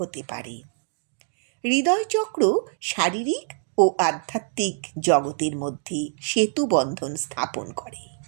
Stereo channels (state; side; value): silent; left; digital silence